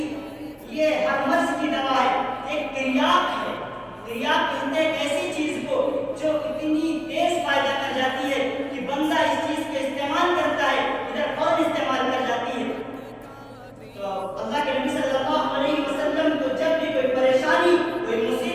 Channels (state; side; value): identical; both; correlation 1.00